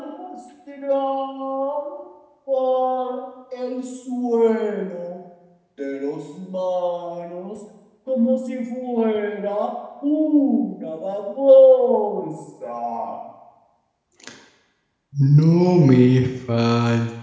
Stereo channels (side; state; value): both; identical; correlation 1.00